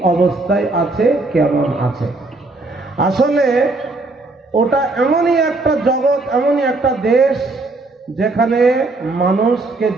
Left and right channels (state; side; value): quieter; left; 3.3 dB